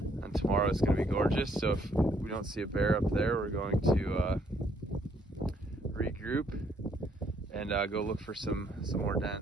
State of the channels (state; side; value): normal; both; correlation 0.68